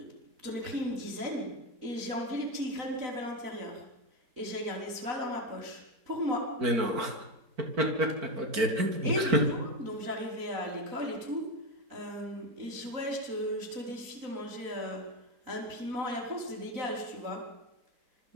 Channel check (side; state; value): left; late; 4.5 ms